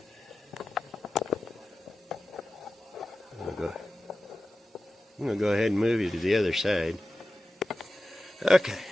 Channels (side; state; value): both; normal; correlation 0.94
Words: I'm going to go ahead and move you to the other side. Okay,